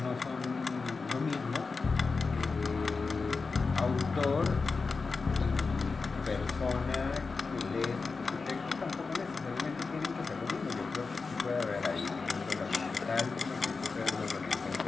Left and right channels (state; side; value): quieter; right; 4.4 dB